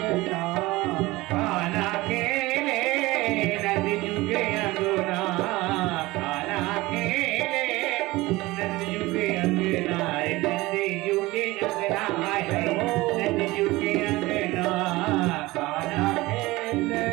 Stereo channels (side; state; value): left; quieter; 20.1 dB